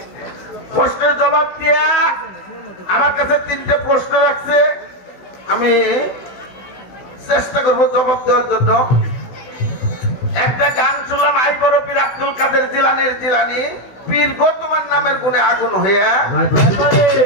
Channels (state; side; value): late; right; 16 ms